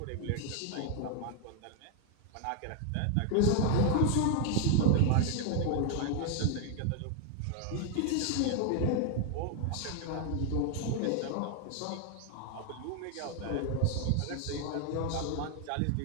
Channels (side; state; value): both; different; correlation 0.01